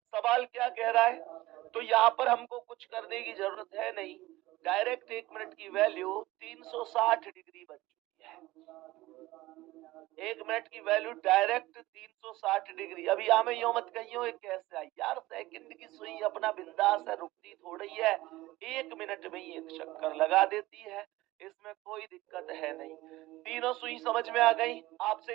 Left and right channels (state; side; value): quieter; left; 18.3 dB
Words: क्या कह रहा है, तो यहाँ पर हमको कुछ करने की जरूरत है नहीं। डायरेक्ट 1 मिनट की वैल्यू 360 डिग्री बन चुकी है। 1 मिनट की वैल्यू डायरेक्ट 360 डिग्री। अभी हमें यो मत कहियो कैसे आई यार, सेकंड की सुई अपना बिंदास है, रुकती थोड़ी है, 1 मिनट में ही 1 चक्कर लगा देती है, इसमें कोई दिक्कत है नहीं। तीनों सुई समझ में आ गई? आपसे